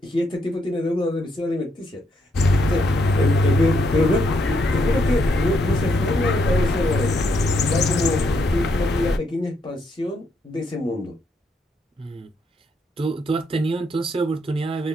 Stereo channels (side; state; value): both; normal; correlation 0.76